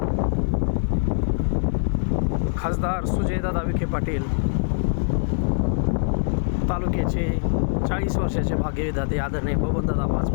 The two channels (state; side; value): silent; right; digital silence